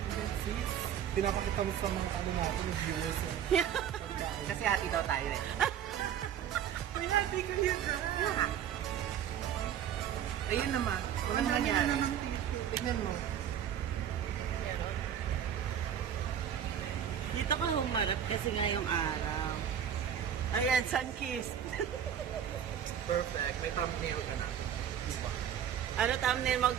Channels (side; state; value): left; quieter; 9.3 dB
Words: Sis, pinapakita mo sa mga ano natin, viewers. Kasi hati daw tayo eh. May hati ka yun na. Ayun naman. Walang nangyari. Tignan mo. Dito ka humarap kasi nga yung araw. Ayan, sun-kissed. Perfect. May thumbnail ka na. Diba? Ano thumbnail mo,